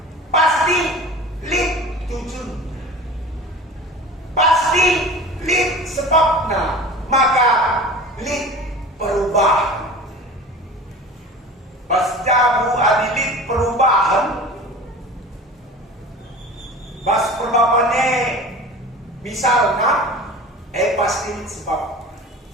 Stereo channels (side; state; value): both; normal; correlation 0.37